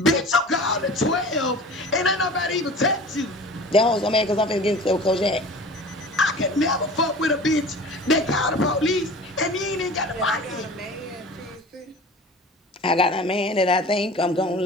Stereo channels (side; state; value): both; normal; correlation 0.40